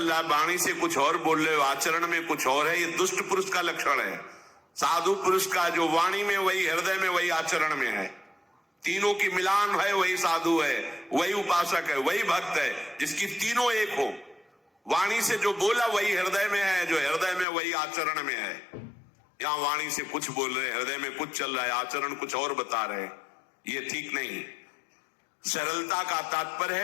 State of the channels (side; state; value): right; drops out; at 17.4 s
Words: रहा है, वाणी से कुछ और बोल रहे हो, आचरण में कुछ और है, ये दुष्ट पुरुष का लक्षण है। साधु पुरुष का जो वाणी में वही, हृदय में वही, आचरण में है, तीनों की मिलान है, वही साधु है, वही उपासक है, वही भक्त है, जिसकी तीनों एक हो। वाणी से जो बोला वही हृदय में है, जो हृदय में वही आचरण में है। यहां वाणी से कुछ बोल रहे, हृदय में कुछ चल रहा है, आचरण कुछ और बता रहे, ये ठीक नहीं। सरलता का तात्पर्य